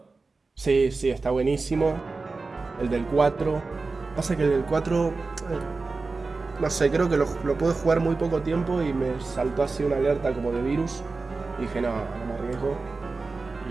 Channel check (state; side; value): quieter; left; 3.9 dB